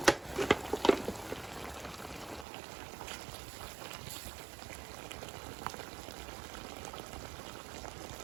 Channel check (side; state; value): left; drops out; at 2.5 s